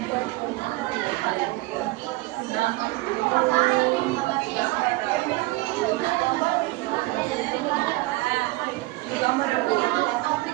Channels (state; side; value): quieter; left; 21.0 dB